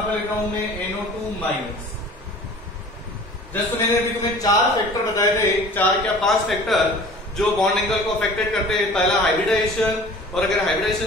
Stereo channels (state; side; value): normal; both; correlation 0.45